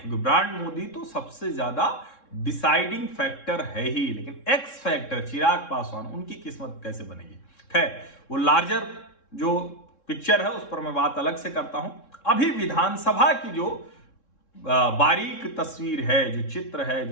ब्रांड मोदी तो सबसे ज्यादा डिसाइडिंग फैक्टर है ही, लेकिन एक्स फैक्टर चिराग पासवान, उनकी किस्मत कैसे बनेगी। खैर, वो लार्जर जो पिक्चर है उस पर मैं बात अलग से करता हूं। अभी विधानसभा की जो बारीक तस्वीर है, जो चित्र है,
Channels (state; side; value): late; right; 3.7 ms